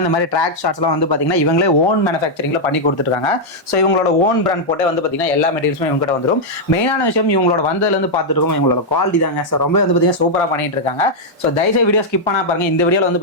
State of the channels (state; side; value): normal; both; correlation -0.03